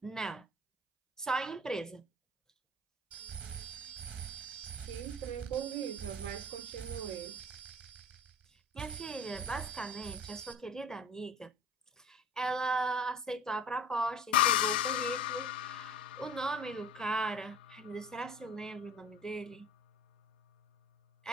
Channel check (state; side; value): normal; both; correlation 0.41